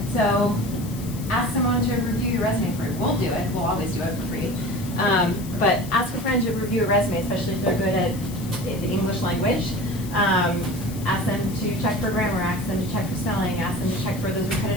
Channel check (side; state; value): left; noise; hiss, 16 dB below the sound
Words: So ask someone to review your resume for you. We'll do it. We'll always do it for free. But ask a friend to review a resume, especially if they're good at the English language. Ask them to check for grammar. Ask them to check for spelling. Ask them to check for those